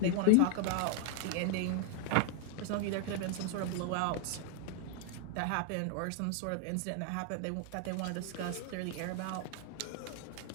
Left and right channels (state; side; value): different; both; correlation 0.00